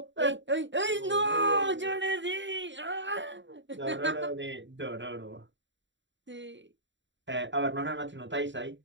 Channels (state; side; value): late; left; 0.54 ms